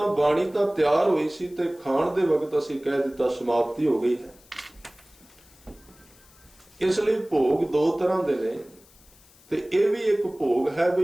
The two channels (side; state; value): left; noise; hiss, 27 dB below the sound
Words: बाणी तो तैयार हुई सी ते खाण दे वक्त असी कह दिता समाप्ति हो गई है। इसलिए भोग दो तरह दे ने ते ये भी एक भोग है